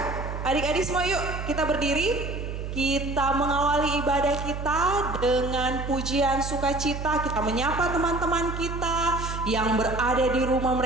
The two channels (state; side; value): noise; right; hum, 6 dB below the sound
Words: adik-adik semua yuk kita berdiri. Kita mengawali ibadah kita dengan pujian sukacita. Kita menyapa teman-teman kita yang berada di rumah